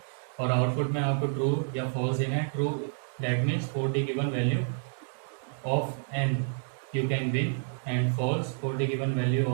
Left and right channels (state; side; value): silent; left; digital silence